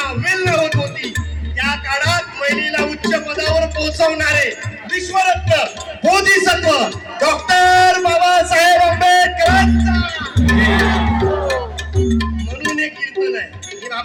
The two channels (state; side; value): identical; both; correlation 1.00